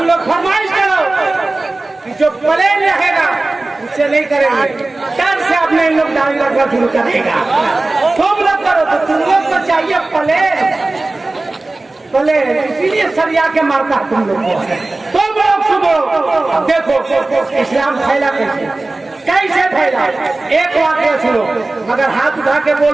लोग फरमाइश करो कि जो प्लेन रहेगा उससे नहीं करेंगे, डर से अपने इन लोग दाढ़ी रखना शुरू करेगा। तुम लोग करो तो तुम लोग को चाहिए प्लेन, इसीलिए सरिया के मारता तुम लोग को। तुम लोग सुनो, अब देखो इस्लाम फैला कैसे फैला। एक वाक्य सुनो, मगर हाथ उठा के बोल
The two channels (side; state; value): left; quieter; 3.0 dB